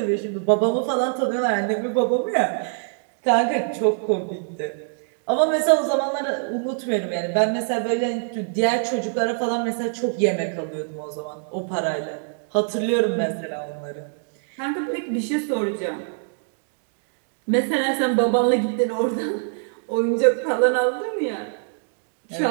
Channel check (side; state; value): left; silent; digital silence